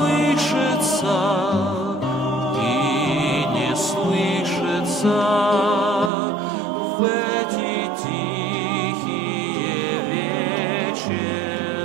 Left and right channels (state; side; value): drops out; left; at 6.1 s